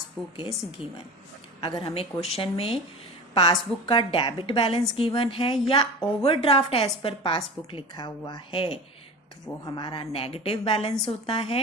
इज गिवन। अगर हमें क्वेश्चन में पासबुक का डेबिट बैलेंस गिवन है या ओवरड्राफ्ट एज पर पासबुक लिखा हुआ है तो वो हमारा नेगेटिव बैलेंस होता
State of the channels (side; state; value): both; normal; correlation 0.33